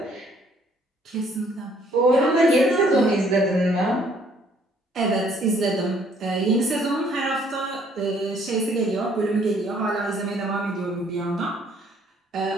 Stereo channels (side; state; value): both; normal; correlation 0.63